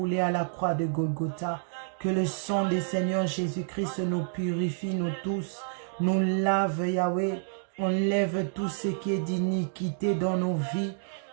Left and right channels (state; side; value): silent; left; digital silence